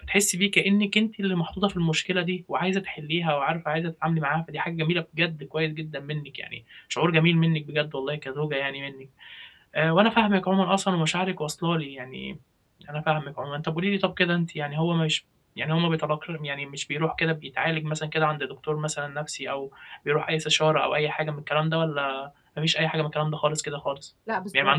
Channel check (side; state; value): both; identical; correlation 1.00